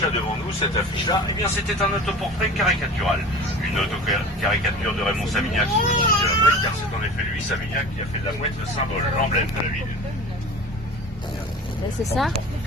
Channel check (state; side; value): normal; both; correlation 0.37